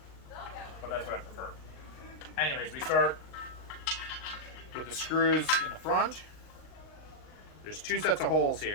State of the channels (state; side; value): late; right; 39 ms